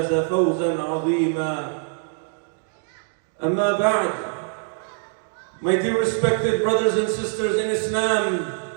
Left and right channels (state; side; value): silent; left; 60 dB below the other